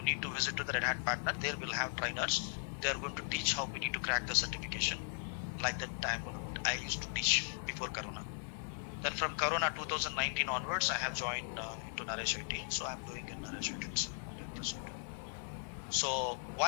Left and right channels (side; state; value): right; silent; 52 dB below the other